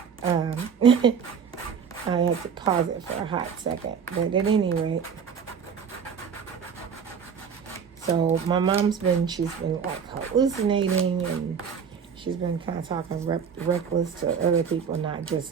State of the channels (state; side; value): quieter; left; 6.8 dB